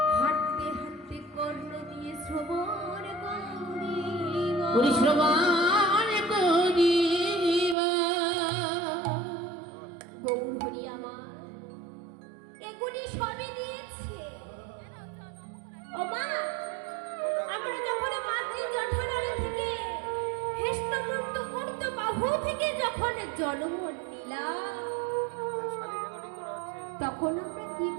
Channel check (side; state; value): left; drops out; at 7.8 s